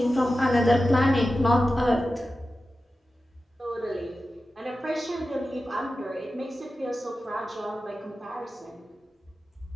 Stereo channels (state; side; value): normal; both; correlation 0.93